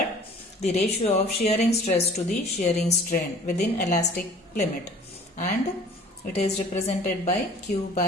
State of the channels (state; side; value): normal; both; correlation 0.49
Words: the ratio of shearing stress to the shearing strain within elastic limit, and it is represented by Q